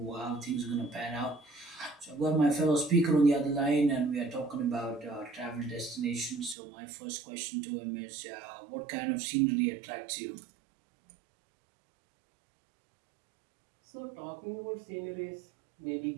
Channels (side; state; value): left; drops out; at 6.6 s